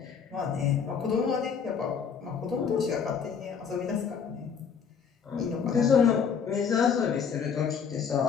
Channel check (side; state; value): right; quieter; 6.7 dB